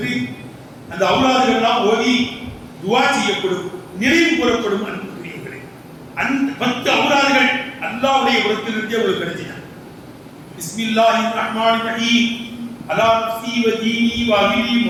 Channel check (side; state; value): both; identical; correlation 1.00